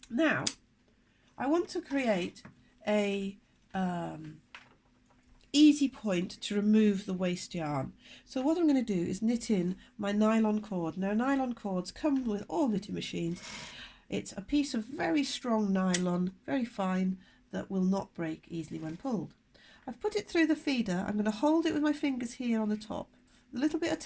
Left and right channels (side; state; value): both; identical; correlation 1.00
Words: Now I want to create a easy point to remove the waste yarn. So what I'm going to do is knit in my nylon cord. Now nylon cords come with all knitting machines. It's a piece of very strong nylon, very fine, that will not break easily when pulled. I've put it through the feeder. I'm going to hold it with my fingers here on the top, a little bit of